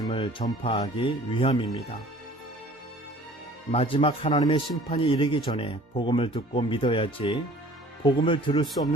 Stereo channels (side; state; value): both; normal; correlation 0.50